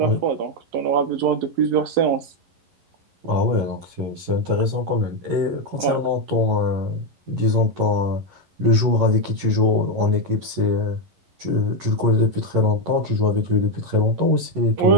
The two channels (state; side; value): late; left; 11 ms